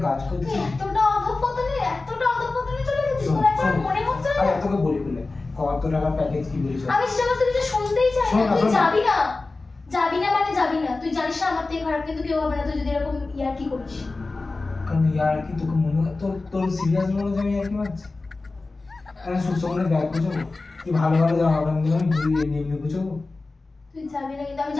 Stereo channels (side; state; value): right; quieter; 3.5 dB